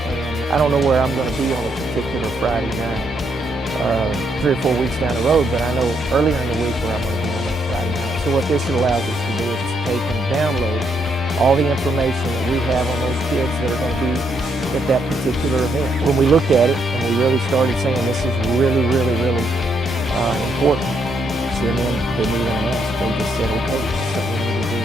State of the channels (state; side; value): normal; both; correlation 0.75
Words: and I don't know where I'm going to be on a particular Friday night, 3 or 4 weeks down the road, but I know earlier in the week where I'm going to be on that Friday night. So what this allows us to do is to take and download all the information that we have on those kids that are going to be at that particular event. When we looked at it and we really started saying this is really, really, really important, CNN didn't even ask. They just said, okay, that's something we need to do.